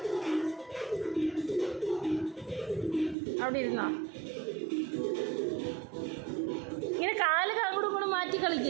അവിടെ ഇരുന്നോ ഇങ്ങനെ കാല് അങ്ങോട്ടും ഇങ്ങോട്ടും മാറ്റി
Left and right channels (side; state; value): left; drops out; at 3.2 s